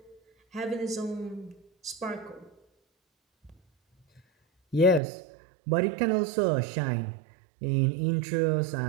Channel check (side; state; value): left; drops out; at 5.0 s